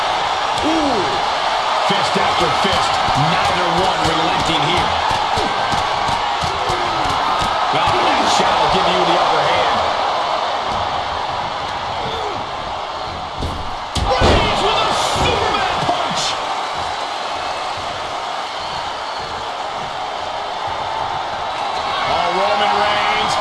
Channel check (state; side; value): identical; both; correlation 1.00